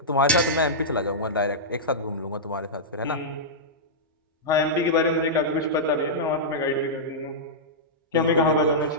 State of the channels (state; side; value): normal; both; correlation -0.12